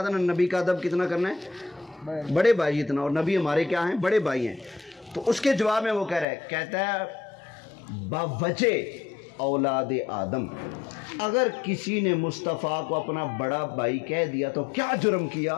نا نبی کا ادب کتنا کرنا ہے؟ بڑے بھائی اتنا، اور نبی ہمارے کیا ہیں؟ بڑے بھائی ہیں. تو اس کے جواب میں وہ کہتا ہے باوجہ اولاد آدم، اگر کسی نے مصطفیٰ کو اپنا بڑا بھائی کہہ دیا تو کیا جرم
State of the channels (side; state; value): right; drops out; at 6.2 s